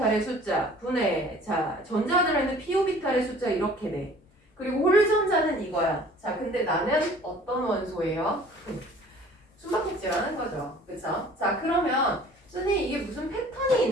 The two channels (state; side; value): normal; both; correlation 0.50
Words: 숫자 분해. 자, 전자가 들어있는 p오비탈의 숫자 이렇게 돼. 그리고 홀전자는 이거야. 자, 근데 나는 어떤 원소예요? 숨바꼭질하는 거죠. 그쵸? 자, 그러면 선생님 이게 무슨 패턴이